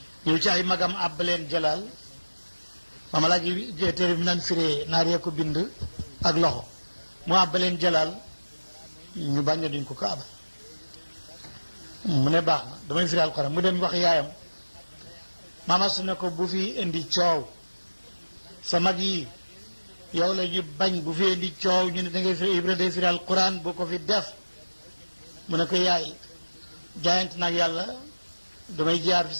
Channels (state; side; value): inverted; both; correlation -1.00